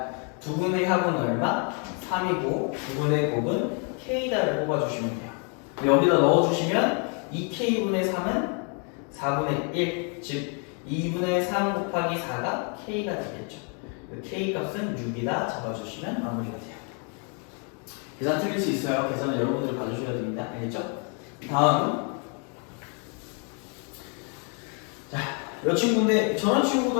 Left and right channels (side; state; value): right; quieter; 38.3 dB